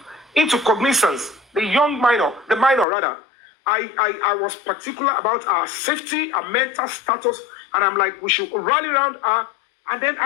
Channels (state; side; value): drops out; right; at 2.9 s